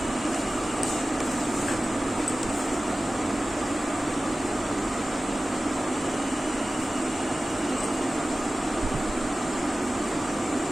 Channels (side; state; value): both; normal; correlation 0.96